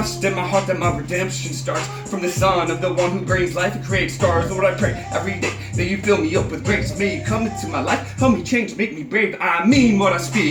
in my heart that my redemption starts from the Son of the one who brings life and creates stars. Lord, I pray every day that you fill me up with grace. May you come into my life, help me change, make me brave. I mean what I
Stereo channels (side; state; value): both; identical; correlation 1.00